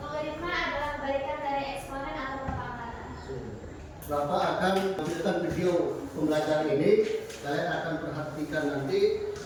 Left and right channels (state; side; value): identical; both; correlation 1.00